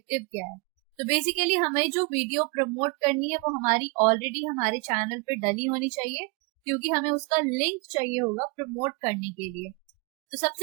क्या है। तो बेसिकली हमें जो वीडियो प्रमोट करनी है वो हमारी ऑलरेडी हमारे चैनल पे डली होनी चाहिए, क्योंकि हमें उसका लिंक चाहिए होगा प्रमोट करने के लिए। तो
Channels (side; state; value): left; quieter; 30.0 dB